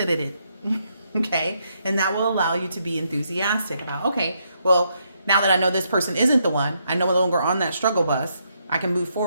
in. Okay? And that will allow you to be enthusiastic about, okay, well, now that I know this person isn't the one, I'm no longer on that struggle bus, I can move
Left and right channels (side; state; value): both; inverted; correlation -0.77